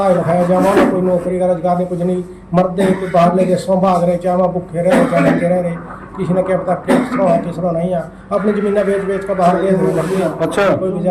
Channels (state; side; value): identical; both; correlation 1.00